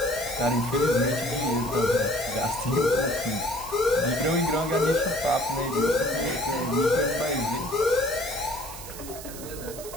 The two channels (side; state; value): right; noise; hiss, 13 dB below the sound